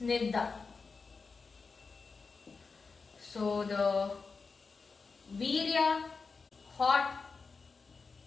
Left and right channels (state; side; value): quieter; right; 4.6 dB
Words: So the virya, hot,